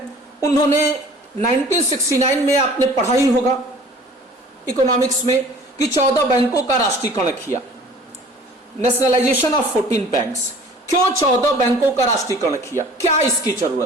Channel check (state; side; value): normal; both; correlation 0.48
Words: उन्होंने 1969 में आपने पढ़ा ही होगा इकोनॉमिक्स में कि 14 बैंकों का राष्ट्रीयकरण किया, नेशनलाइजेशन ऑफ 14 बैंक्स। क्यों 14 बैंकों का राष्ट्रीयकरण किया? क्या इसकी